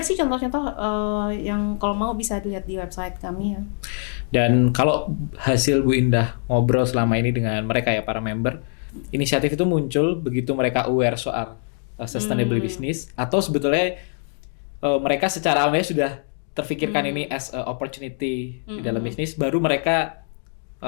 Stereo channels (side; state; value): right; silent; 55 dB below the other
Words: sih contoh-contoh yang kalau mau bisa dilihat di website kami ya. Dan kalau hasil Bu Indah ngobrol selama ini dengan mereka ya para member, inisiatif itu muncul begitu mereka aware soal sustainable business, atau sebetulnya mereka secara awalnya sudah terfikirkan ini as a opportunity di dalam bisnis, baru mereka